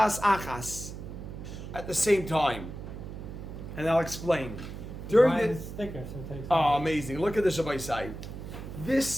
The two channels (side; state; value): right; noise; hum, 10 dB below the sound